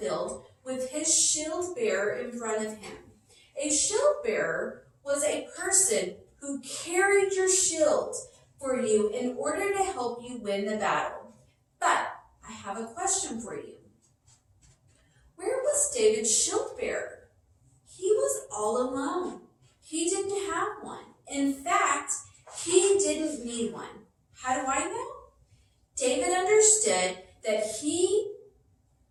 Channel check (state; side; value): identical; both; correlation 1.00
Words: with his shield bearer in front of him. A shield bearer was a person who carried your shield for you in order to help you win the battle. But I have a question for you. Where was David's shield bearer? He was all alone. He didn't have one. In fact, he didn't need one. How do I know? David understood that he